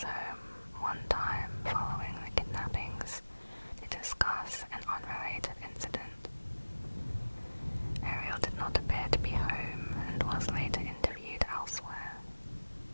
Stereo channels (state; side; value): inverted; both; correlation -1.00